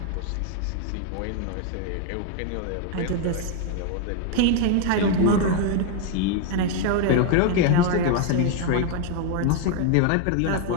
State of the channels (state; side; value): different; both; correlation 0.00